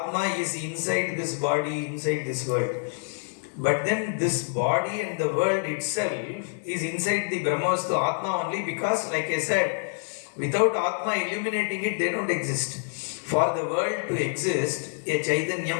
is inside this body, inside this world. But then this body and the world itself is inside the Brahmavastu Atma only, because like I said, without Atma illuminating it, they don't exist. For the world to exist, a Chaitanyam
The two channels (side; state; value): right; silent; digital silence